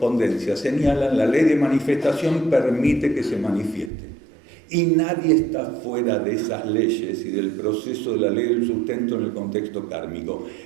señalan, la ley de manifestación permite que se manifieste. Y nadie está fuera de esas leyes y del proceso de la ley del sustento en el contexto kármico.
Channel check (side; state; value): left; drops out; at 3.9 s